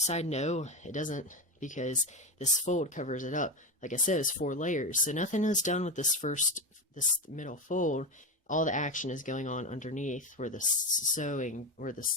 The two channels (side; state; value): both; normal; correlation 0.16